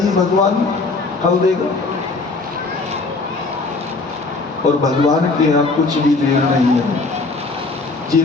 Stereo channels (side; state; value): right; quieter; 3.7 dB